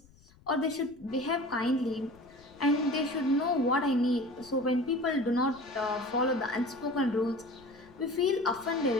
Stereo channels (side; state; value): left; noise; rumble, 27 dB below the sound